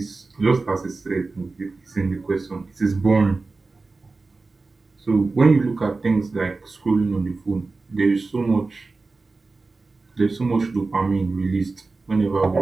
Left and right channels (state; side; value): quieter; left; 3.8 dB